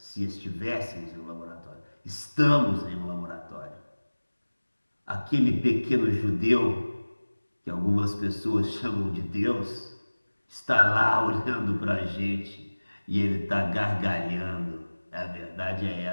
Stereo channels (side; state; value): both; inverted; correlation -1.00